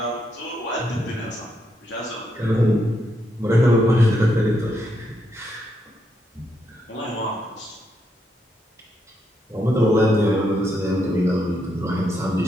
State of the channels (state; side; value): normal; both; correlation 0.79